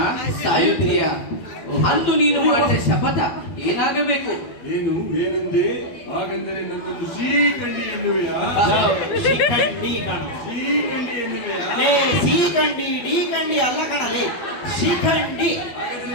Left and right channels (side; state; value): right; late; 12 ms